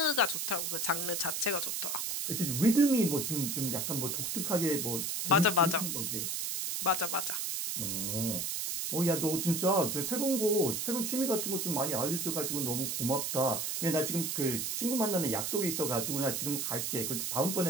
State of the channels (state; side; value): noise; right; hiss, 1 dB below the sound